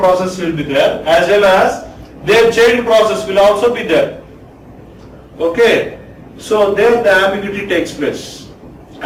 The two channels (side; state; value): both; identical; correlation 1.00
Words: will be there, as well as their child process will also be there. Okay. So there the ambiguity takes place,